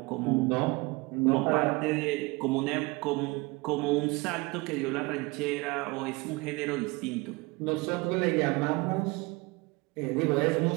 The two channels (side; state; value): left; quieter; 24.9 dB